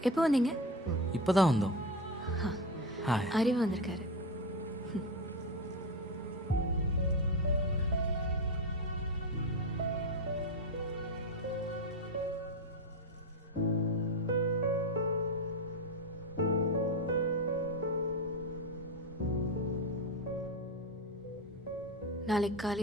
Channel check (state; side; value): normal; both; correlation 0.16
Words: எப்போ வந்தீங்க? இப்போதான் வந்தோம். அறிவு வந்திருக்காரு. நாளைக்கு